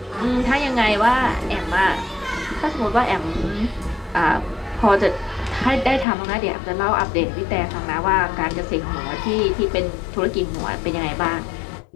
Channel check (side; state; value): right; drops out; at 6.1 s